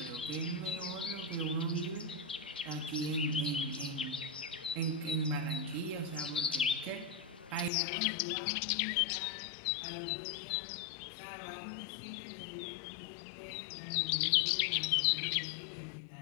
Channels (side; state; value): right; drops out; at 7.7 s